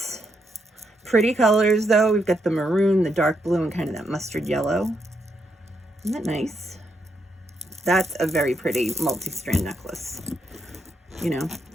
Pretty colors though. We've got the maroon, the dark blue, and kind of that mustard yellow. Isn't that nice? That's a very pretty multi-strand necklace. You know,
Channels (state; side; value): normal; both; correlation 0.79